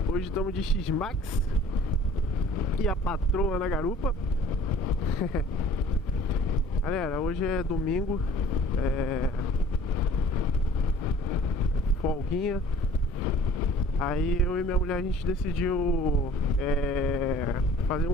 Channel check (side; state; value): both; normal; correlation 0.50